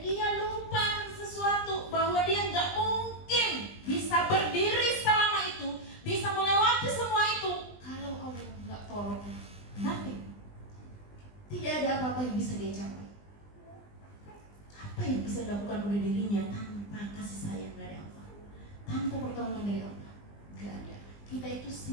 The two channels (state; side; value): late; right; 20 ms